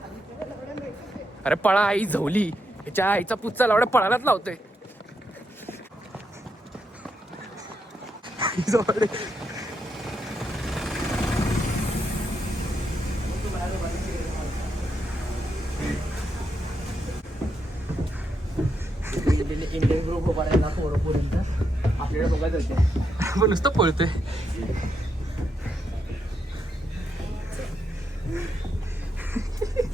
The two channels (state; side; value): normal; both; correlation 0.81